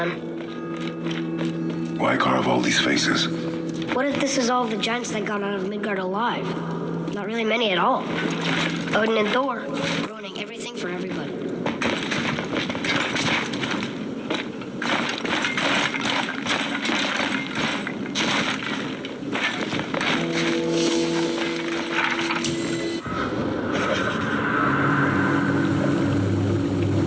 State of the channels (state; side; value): identical; both; correlation 1.00